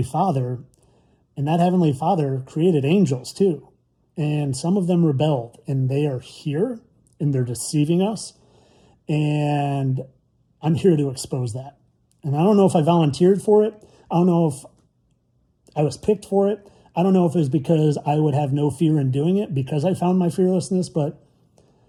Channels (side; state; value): both; identical; correlation 1.00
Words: Father, and that heavenly Father created angels too. And some of them rebelled, and they are here, and they're deceiving us. And I'm here to expose that. And I don't know if I volunteered for it. I don't know if I was picked for it. I don't know if it was because I would have no fear in doing it because I found my fearlessness, but